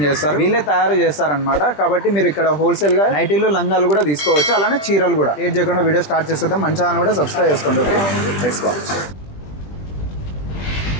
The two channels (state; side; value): late; right; 20 ms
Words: చేస్తారు. వీళ్ళే తయారు చేస్తారనమాట. కాబట్టి మీరు ఇక్కడ హోల్సేల్గా నైటీలు లంగాలు కూడా తీసుకోవచ్చు, అలానే చీరలు కూడా. లేట్ చేయకుండా వీడియో స్టార్ట్ చేసేద్దాం. మన ఛానల్ కూడా సబ్స్క్రైబ్ చేసుకోండి. Okay, let's watch.